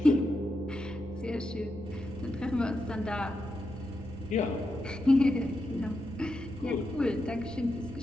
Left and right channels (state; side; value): normal; both; correlation 0.87